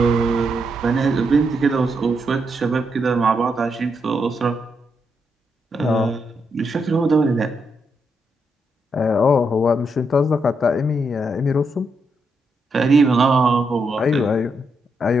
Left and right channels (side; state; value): both; normal; correlation 0.80